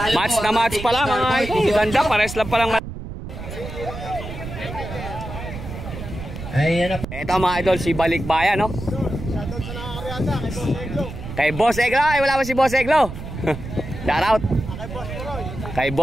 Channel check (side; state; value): right; noise; rumble, 9 dB below the sound